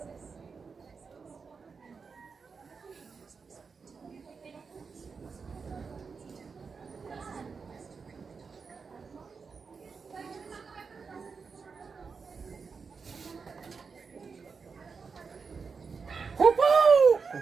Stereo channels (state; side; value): quieter; left; 5.2 dB